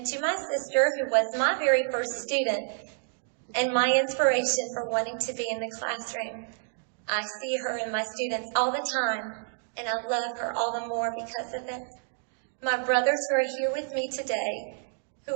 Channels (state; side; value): silent; left; digital silence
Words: to my sister, who was my very first student and my inspiration for wanting to be in the classroom, I see her and my students all the time, and I love her all the more because of it. My brothers who are here with me today, who